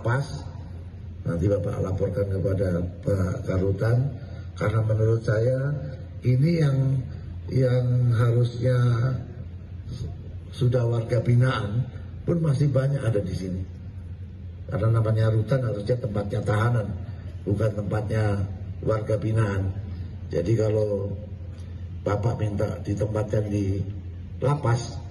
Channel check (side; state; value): both; identical; correlation 1.00